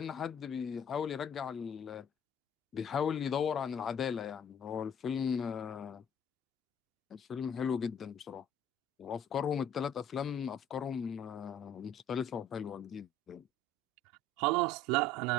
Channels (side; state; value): both; normal; correlation 0.53